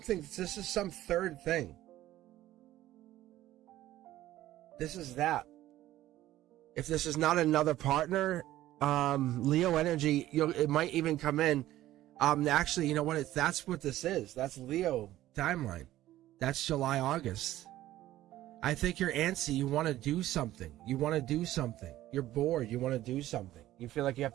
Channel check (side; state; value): left; quieter; 14.5 dB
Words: thing. This is that. If this is not another partner, Leo energy, it might even come in. Actually, you know what? That's what this is. That's Leo timeline. That's July, August. I think you're antsy. You want to do something. You're bored. You want to do something. You feel like you have